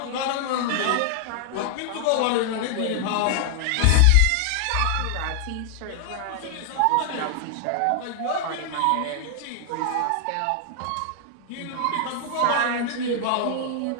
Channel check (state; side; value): different; both; correlation 0.00